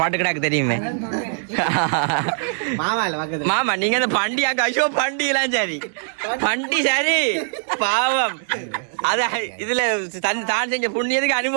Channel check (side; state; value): left; silent; digital silence